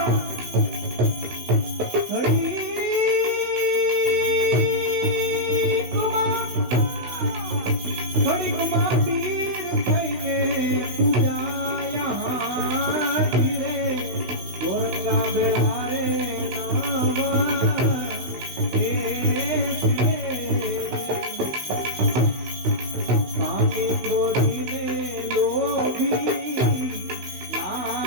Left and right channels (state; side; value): late; left; 16 ms